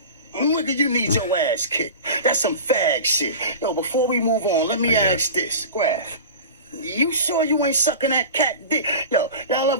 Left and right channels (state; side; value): inverted; both; correlation -0.32